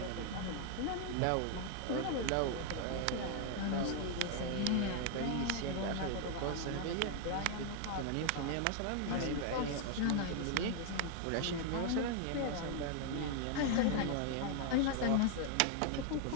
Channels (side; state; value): both; different; correlation 0.00